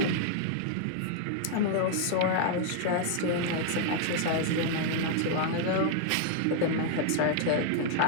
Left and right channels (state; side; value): different; both; correlation -0.01